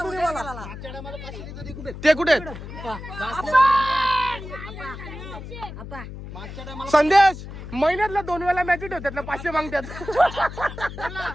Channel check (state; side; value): noise; left; hum, 11 dB below the sound